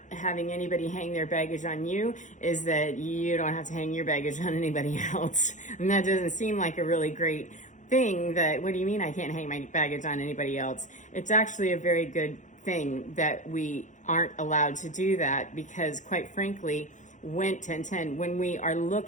having anybody hang their baggage on you, is that you don't have to hang your baggage on anybody else. And that doesn't seem like a really great thing. That, what do you mean I can't hang my baggage on anybody else? It's actually a very good thing that we aren't allowed to do that, because quite frankly, when we are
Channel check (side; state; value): right; late; 0.36 ms